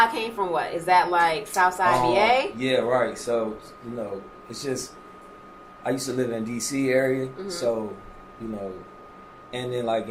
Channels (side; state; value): both; identical; correlation 1.00